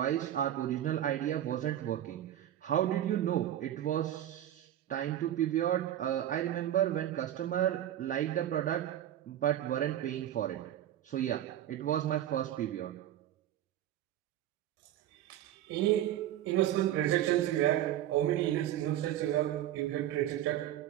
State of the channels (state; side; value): quieter; left; 12.0 dB